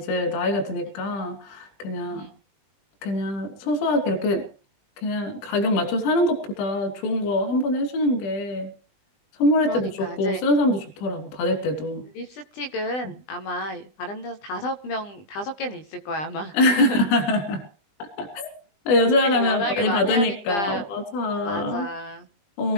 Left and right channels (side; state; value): right; late; 20 ms